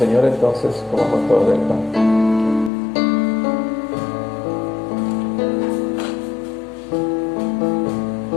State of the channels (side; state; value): right; drops out; at 2.7 s